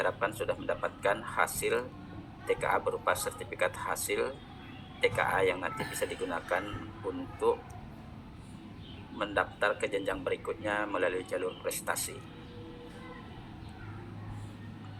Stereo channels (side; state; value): both; identical; correlation 1.00